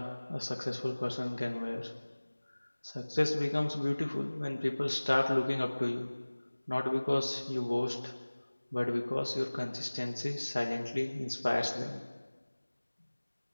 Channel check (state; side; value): inverted; both; correlation -1.00